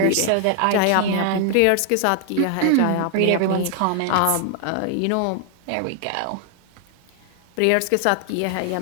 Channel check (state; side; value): different; both; correlation 0.00